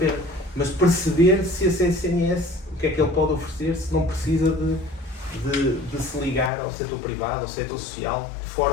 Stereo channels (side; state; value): right; drops out; at 6.5 s